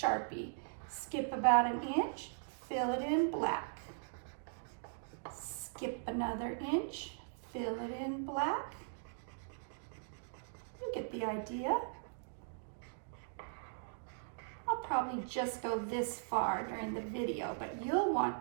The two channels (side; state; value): left; silent; digital silence